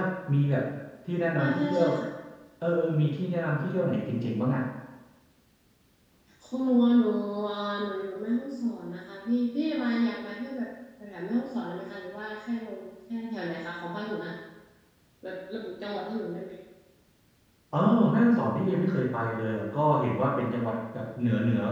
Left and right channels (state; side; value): identical; both; correlation 1.00